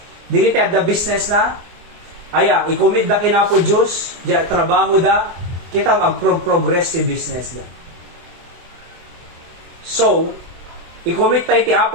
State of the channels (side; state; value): left; late; 24 ms